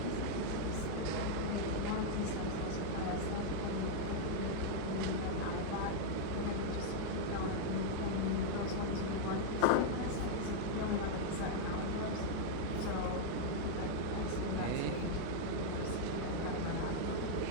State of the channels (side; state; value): both; different; correlation -0.01